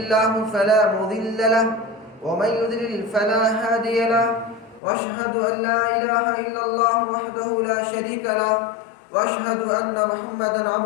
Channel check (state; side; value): drops out; right; at 4.8 s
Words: فلا مضل له ومن يضلل فلا هادي له، وأشهد أن لا إله إلا الله وحده لا شريك له، وأشهد أن محمدا